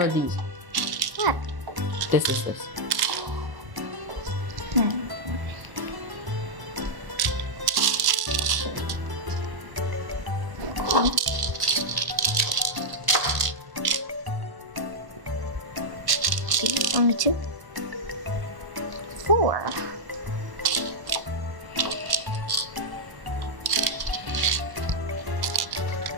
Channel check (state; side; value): late; left; 1.0 ms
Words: of these. What? This is this. 4.